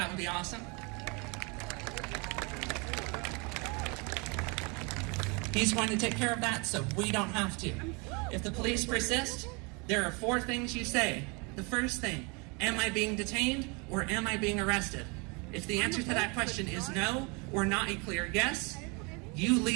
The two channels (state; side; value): quieter; left; 30.7 dB